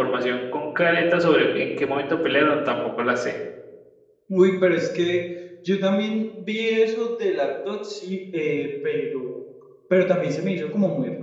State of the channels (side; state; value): both; identical; correlation 1.00